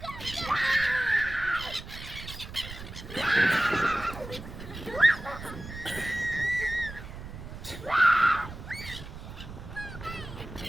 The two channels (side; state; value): right; noise; rumble, 12 dB below the sound